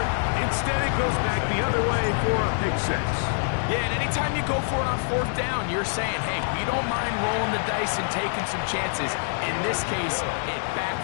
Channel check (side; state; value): right; silent; 61 dB below the other